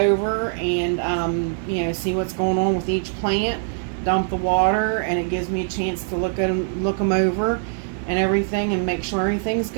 and you know, see what's going on with each plant. Dump the water, and it gives me a chance to look them over and everything, and make sure everything's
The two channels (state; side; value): silent; left; digital silence